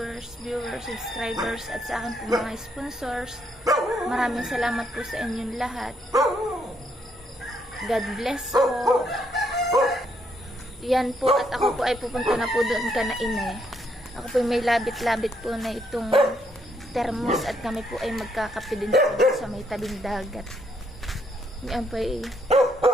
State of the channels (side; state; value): both; normal; correlation 0.73